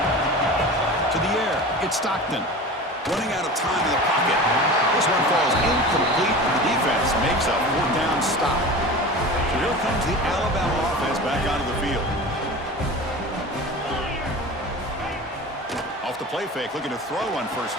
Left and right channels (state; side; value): normal; both; correlation 0.34